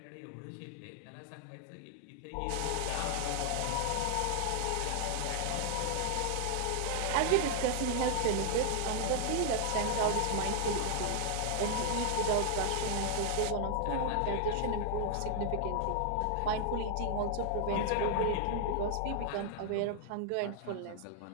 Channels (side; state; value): both; different; correlation 0.00